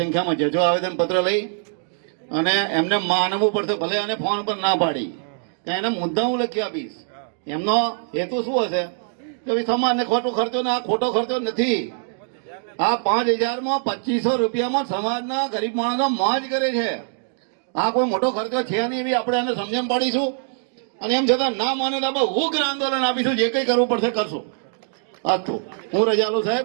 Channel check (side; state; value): left; silent; digital silence